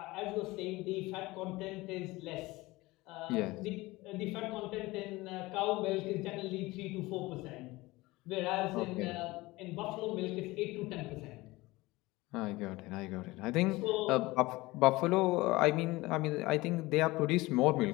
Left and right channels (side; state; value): right; quieter; 20.6 dB